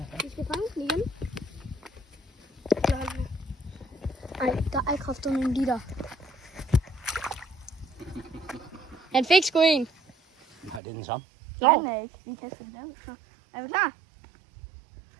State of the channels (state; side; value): drops out; left; at 10.8 s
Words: Vi skal fange den igen. Ej, der er kraftedeme en liter. Han fik sgu en. Nej, det er den samme. Nej, den er ikke. Vi kaster den der. Så. Er vi klar?